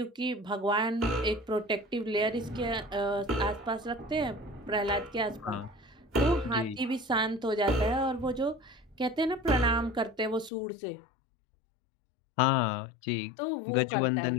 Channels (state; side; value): drops out; right; at 10.5 s